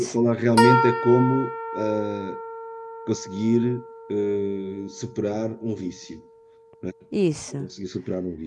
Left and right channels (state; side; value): identical; both; correlation 1.00